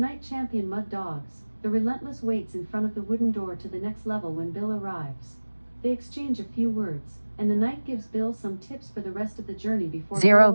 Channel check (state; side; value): inverted; both; correlation -1.00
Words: champion Mud Dogs, the relentless, waits in front of the wooden door to the next level when Bill arrives. They exchange a few words, and the knight gives Bill some tips for the rest of the journey before 0 Bill